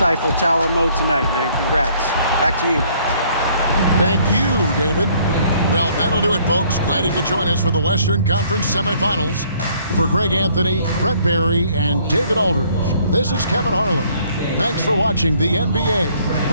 Tower mode tonight, man. Congrats. Back to you. Thank you, David. Well, that'll do it, folks. Glad you could join us for the Western Conference Semifinals. For Greg Anthony, Brett Barry, and David Aldridge, this is Kevin Harlan. Thanks for watching the NBA,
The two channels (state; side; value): inverted; both; correlation -0.62